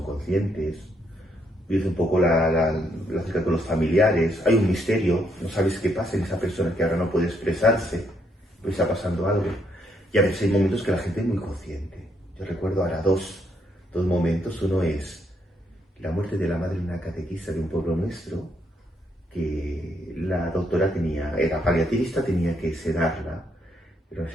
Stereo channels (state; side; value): normal; both; correlation 0.74